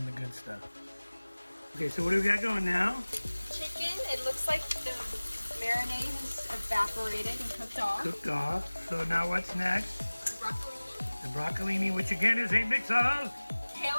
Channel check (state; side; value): inverted; both; correlation -1.00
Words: the good stuff. Okay, so what do we got going now? Chicken. It looks like the marinade is evaporated and cooked off. Cooked off. So now what's next? Broccolini. The broccolini, which again is a mix of? Kale